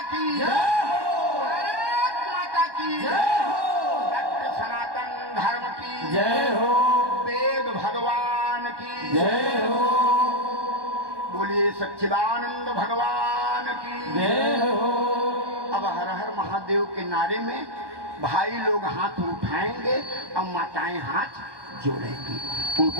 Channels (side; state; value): left; late; 1.2 ms